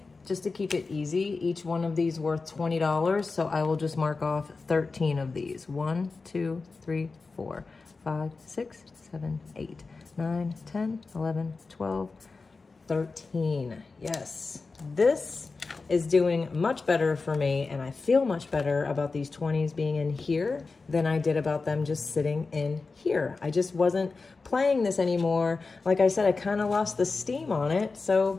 just to keep it easy, each one of these worth $20. So I will just mark off 13 of these. 1, 2, 3, 4, 5, 6, 7, 8, 9, 10, 11, 12, 13. Yes, this is doing much better for me, and I feel much better about these 20s being in here than I did about them just sitting in here. I just wasn't playing this anymore. Like I said, I kind of lost the steam on it,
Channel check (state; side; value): quieter; right; 4.1 dB